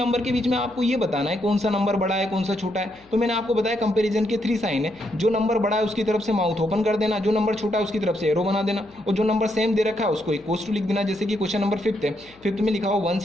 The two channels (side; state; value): left; noise; hum, 29 dB below the sound